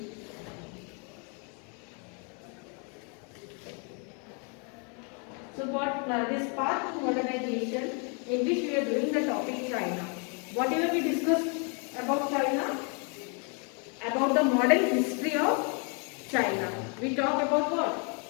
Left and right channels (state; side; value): quieter; right; 36.8 dB